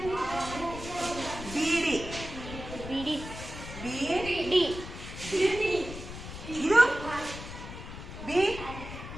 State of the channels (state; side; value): noise; left; rumble, 10 dB below the sound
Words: ಬೀಡಿ, ಬಿಡಿ, ಬಿ ಡಿ, ಇದು ಬಿ